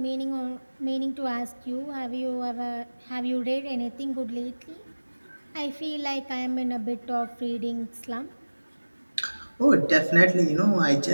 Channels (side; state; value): both; inverted; correlation -1.00